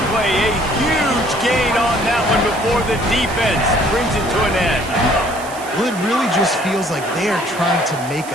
play, a huge gain on that one before the defense brings it to an end. Well, it really just feels like they are trying to make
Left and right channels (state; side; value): noise; right; hiss, 16 dB below the sound